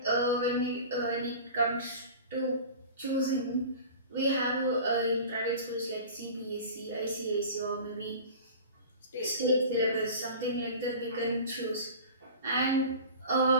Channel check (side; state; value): both; inverted; correlation -0.38